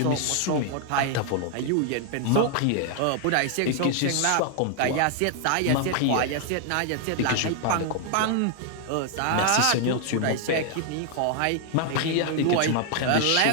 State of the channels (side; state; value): both; different; correlation 0.00